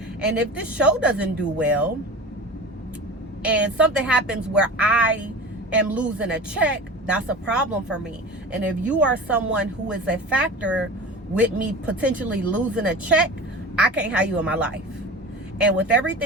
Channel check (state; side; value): normal; both; correlation 0.34